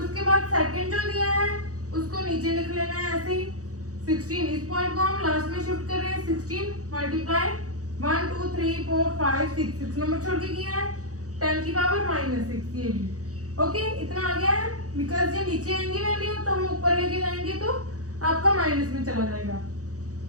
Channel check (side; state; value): left; late; 0.66 ms